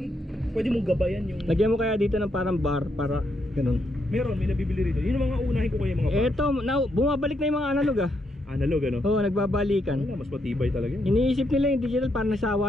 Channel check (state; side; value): normal; both; correlation 0.79